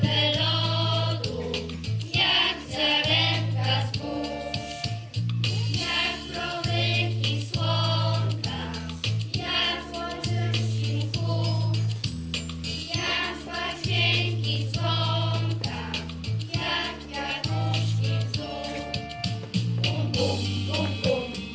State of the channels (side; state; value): both; identical; correlation 1.00